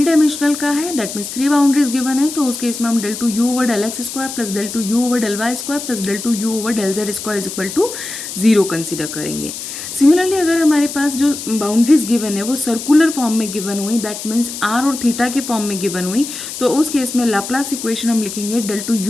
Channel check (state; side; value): noise; left; hiss, 8 dB below the sound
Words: डायमेंशनल का है, that means three boundaries given है, तो उस case में हम del two you over del x square plus del two you over del y square plus del two you over del z square is equal to zero consider करेंगे। Similarly अगर हमारे पास जो बाउंड्रीज गिवन है वो circular form में given हुई, that means r और थीटा की फॉर्म में गिवन हुई, तो उस केस में लाप्लास इक्वेशन हम लिखेंगे del two